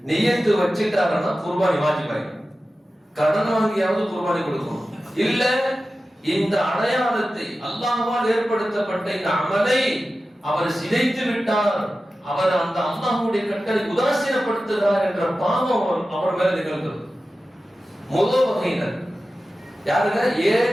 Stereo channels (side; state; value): both; normal; correlation 0.94